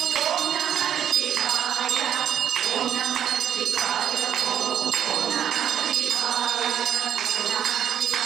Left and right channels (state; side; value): quieter; left; 9.7 dB